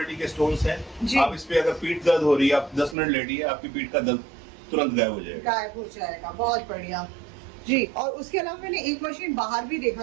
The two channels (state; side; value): drops out; left; at 3.0 s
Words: के स्टोन्स हैं। जी। आप इस पे अगर पीठ दर्द हो रही है, आप 10 मिनट लेटिए, आपकी पीठ का दर्द तुरंत गायब हो जाएगा। गायब हो जाएगा, बहुत बढ़िया जी। और उसके अलावा मैंने एक मशीन बाहर भी देखा